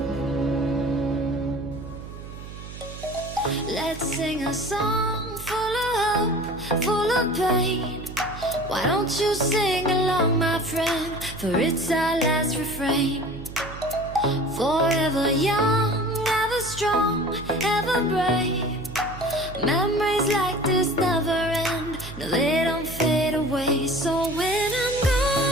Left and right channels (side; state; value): right; noise; hum, 12 dB below the sound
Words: Let's sing a song full of hope, full of pain. Why don't you sing along, my friend? For it's our last refrain. Forever young, ever strong, ever brave. Memories like this never end. No, they don't fade away. So when I'm